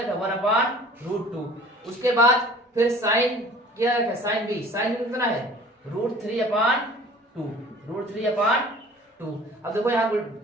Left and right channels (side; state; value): both; normal; correlation 0.48